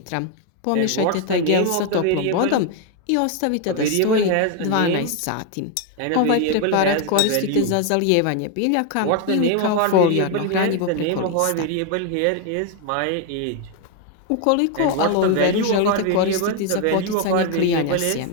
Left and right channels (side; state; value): both; different; correlation 0.01